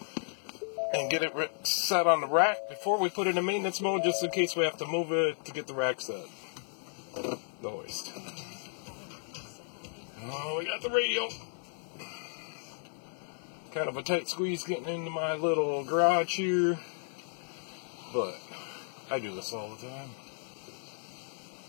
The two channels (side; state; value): right; silent; 55 dB below the other